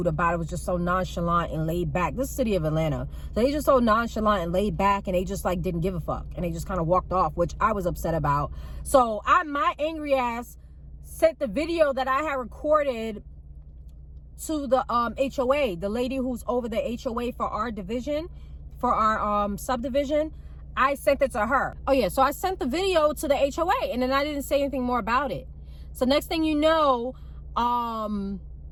about it was just so nonchalant and laid back. This is the city of Atlanta. So they just so nonchalant and laid back, and they just like didn't give a fuck. And they just kind of walked off, which I was upset about. So my angry ass sent the video that I had recorded to the HOA, the lady who's over the HOA for our division, for our subdivision. I sent it to her. Oh yeah, so I sent the video to the HOA, and then I didn't say anything more about it. So next thing you know,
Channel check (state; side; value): identical; both; correlation 1.00